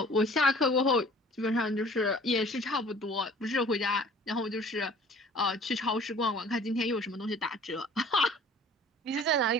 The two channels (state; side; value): normal; both; correlation 0.50